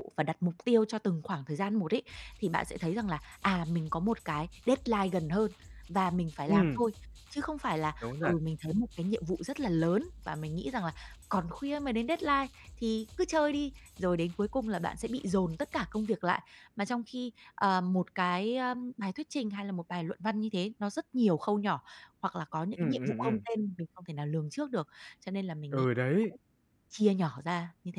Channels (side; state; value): both; identical; correlation 1.00